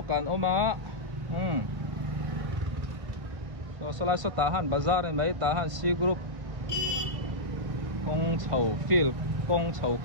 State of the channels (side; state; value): left; late; 1.8 ms